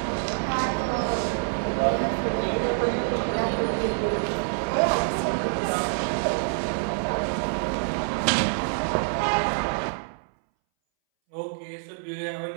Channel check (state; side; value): silent; left; 61 dB below the other